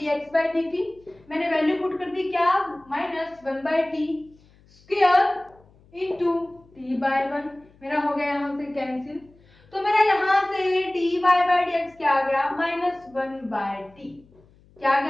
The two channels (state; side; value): noise; left; hum, 29 dB below the sound